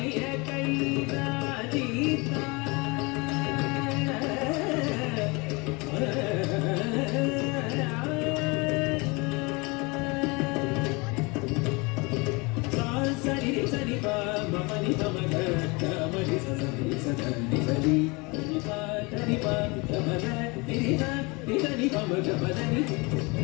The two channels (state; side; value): quieter; right; 27.3 dB